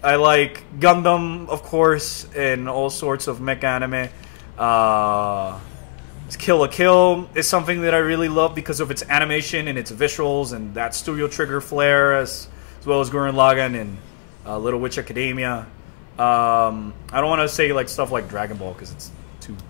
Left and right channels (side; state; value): right; silent; 63 dB below the other